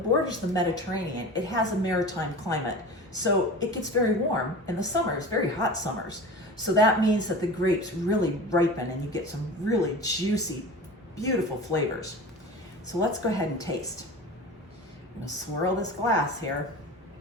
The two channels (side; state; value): both; normal; correlation 0.34